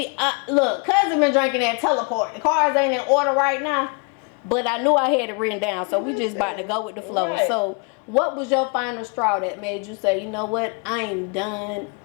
Cuzn been drinking that teleport. The cards ain't in order right now, but I knew I had it written down. So we just about to go with the flow. Right. So what was your final straw that made you say, you know what, I ain't done,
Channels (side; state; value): right; quieter; 35.8 dB